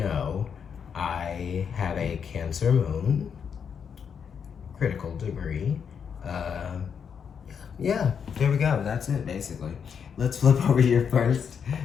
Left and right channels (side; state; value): right; quieter; 7.1 dB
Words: I have a Cancer moon, critical degree. Uh, yeah, there we go. That's it, basically. Let's flip over your first